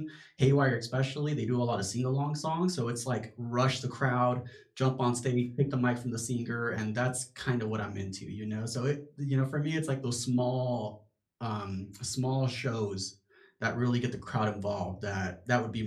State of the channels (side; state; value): both; identical; correlation 1.00